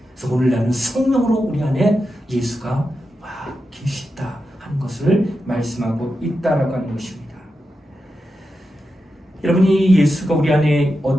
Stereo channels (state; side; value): normal; both; correlation 0.89